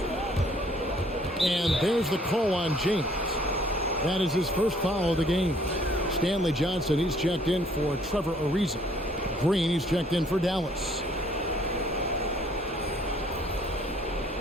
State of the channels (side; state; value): both; normal; correlation 0.61